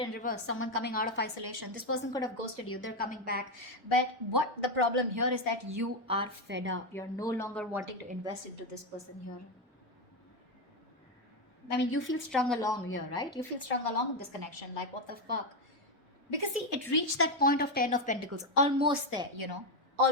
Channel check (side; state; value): both; normal; correlation 0.07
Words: reverse, someone coming out of isolation. This person could have ghosted you. They're coming back. But what the problem here is that you are fed up. You're no longer wanting to invest into this person here. I mean, you feel strung along here, right? You feel strung along in this connection. Like, what the fuck? Because see, it reached that point of 10 of Pentacles. Almost there,